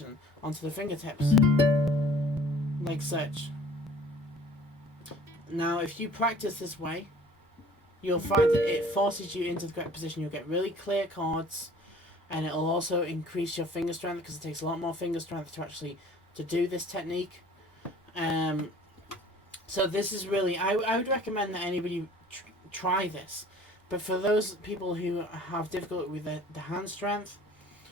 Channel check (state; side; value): normal; both; correlation 0.50